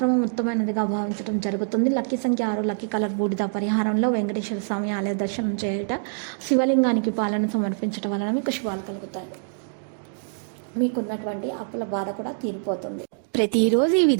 ఉత్తమైనదిగా భావించడం జరుగుతుంది. లక్కీ సంఖ్య 6, లక్కీ కలర్ బూడిద. పరిహారంలో వెంకటేశ్వర స్వామి ఆలయ దర్శనం చేయట, శివలింగానికి పాలన సమర్పించడం వలన మీకు శుభాలు కలుగుతాయి. మీకున్నటువంటి అప్పుల బాధ కూడా తీరిపోతుంది. ప్రతిరోజు ఈ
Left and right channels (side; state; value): left; silent; digital silence